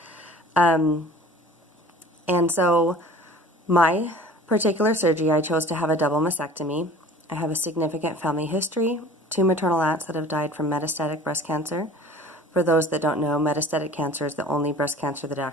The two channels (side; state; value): both; normal; correlation 0.45